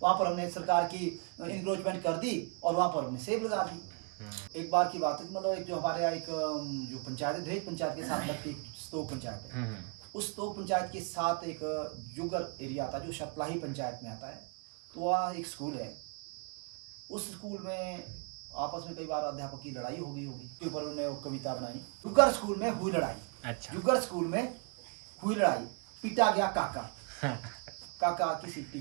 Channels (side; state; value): left; quieter; 38.3 dB